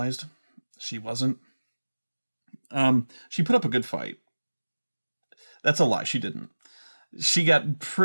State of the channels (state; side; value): inverted; both; correlation -1.00